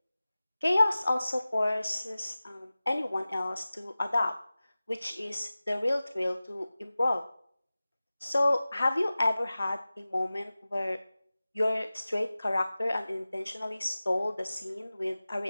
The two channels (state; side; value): inverted; both; correlation -0.97